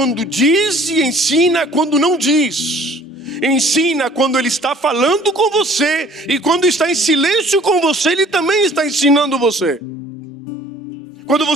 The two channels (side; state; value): both; normal; correlation 0.53